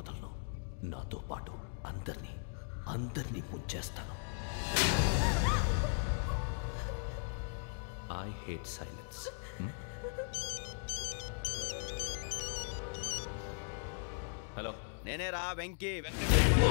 నాతో పాటు అందరినీ ముంచేస్తాను. I hate silence. హలో, నేనే రా వెంకీ.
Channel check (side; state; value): right; silent; digital silence